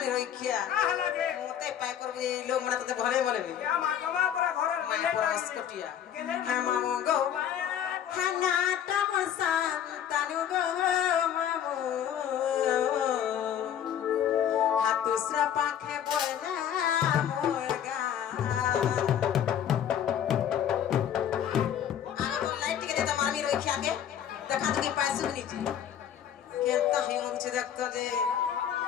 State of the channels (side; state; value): right; quieter; 9.7 dB